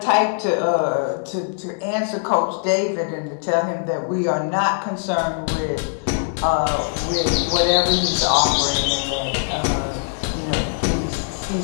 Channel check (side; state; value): right; silent; digital silence